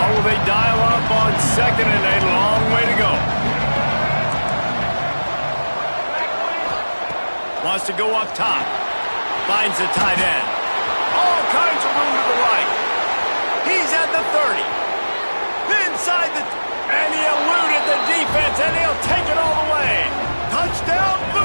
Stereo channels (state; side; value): inverted; both; correlation -1.00